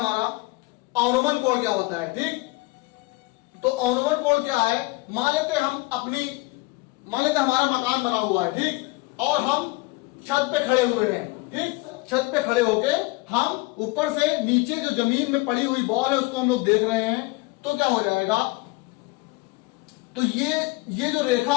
अवनमन कोण क्या होता है। ठीक, तो अवनमन कोण क्या है? मान लेते हमारा मकान बना हुआ है, ठीक, और हम छत पे खड़े हुए हैं। ठीक, छत पे खड़े होके हम ऊपर से नीचे जो जमीन में पड़ी हुई बॉल है उसको हम लोग देख रहे हैं, तो क्या हो जाएगा? तो ये जो रेखा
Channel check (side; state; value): right; quieter; 23.2 dB